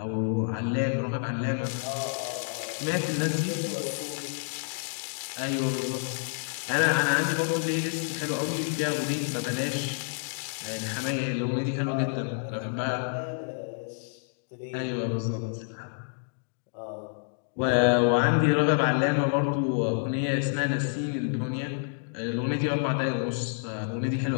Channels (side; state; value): right; silent; digital silence